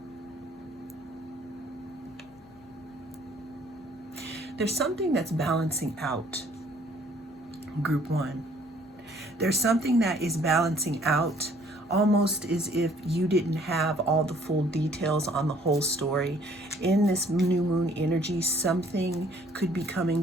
There's something that's balancing out, group one. There's something that is balancing out, almost as if you didn't have all the full details on the whole story. In this new moon energy, something could be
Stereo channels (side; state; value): both; normal; correlation 0.60